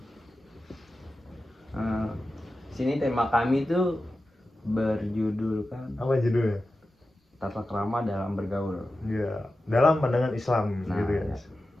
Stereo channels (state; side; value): normal; both; correlation 0.93